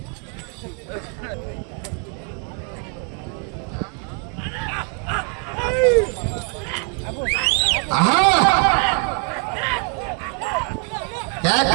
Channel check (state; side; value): quieter; left; 38.7 dB